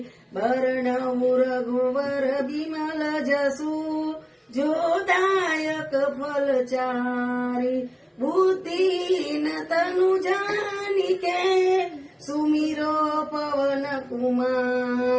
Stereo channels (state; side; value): identical; both; correlation 1.00